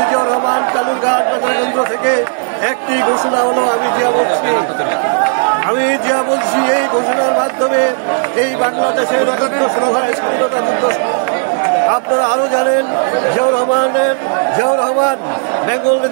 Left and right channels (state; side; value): silent; left; digital silence